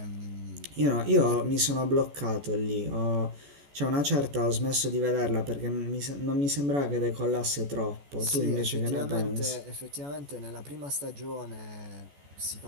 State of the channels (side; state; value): left; late; 14 ms